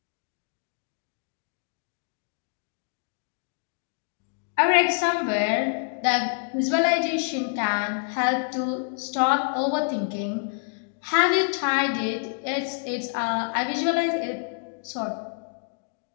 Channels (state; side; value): silent; right; 60 dB below the other